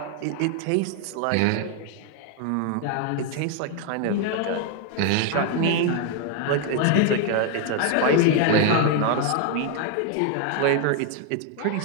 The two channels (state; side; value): different; both; correlation 0.00